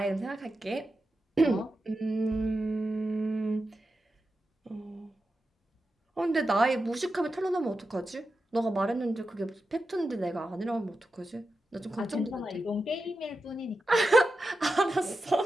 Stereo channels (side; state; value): both; normal; correlation 0.90